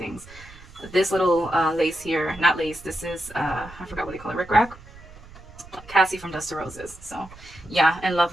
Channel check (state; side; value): noise; right; rumble, 19 dB below the sound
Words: This little lace here, not lace, this is, I forgot what they call it, rickrack. Cassie from Dust to Roses. So yeah, in love